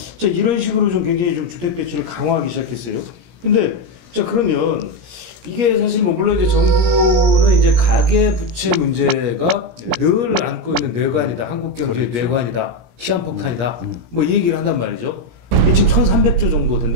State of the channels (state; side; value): late; left; 17 ms